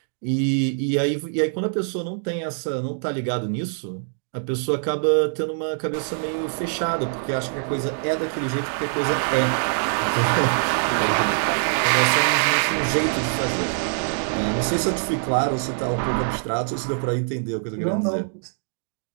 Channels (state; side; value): silent; left; digital silence